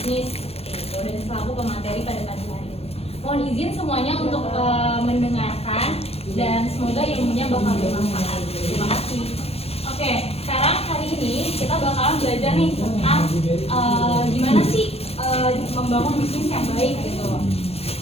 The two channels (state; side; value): late; right; 0.29 ms